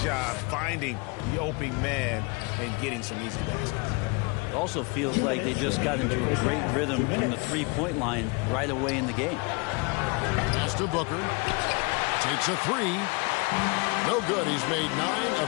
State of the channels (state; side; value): quieter; right; 28.7 dB